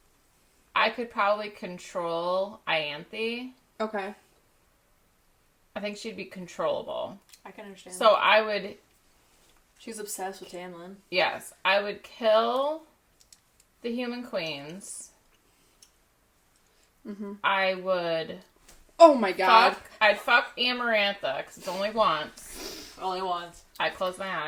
I could probably control Ianthe. Okay. I think she'd be controllable. I can understand. So I would... She's obsessed with Tamlin. Yes. I would kill the Human Queens. Mm-hmm. I would... Oh my god. I'd fuck Amarantha, because it's only once. Only once. I'd close my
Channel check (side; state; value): both; identical; correlation 1.00